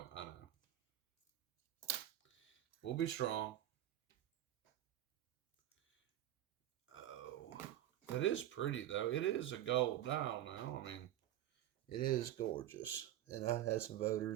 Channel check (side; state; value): left; quieter; 12.8 dB